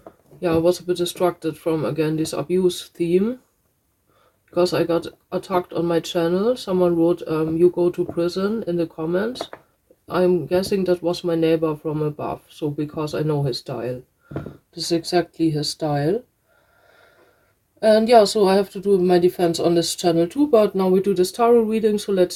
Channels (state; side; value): identical; both; correlation 1.00